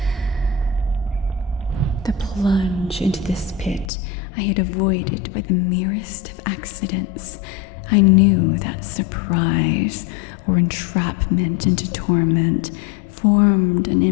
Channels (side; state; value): right; drops out; at 3.9 s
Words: The plunge into this pit I had avoided by the merest of accidents. I knew that surprise or entrapment into torment formed an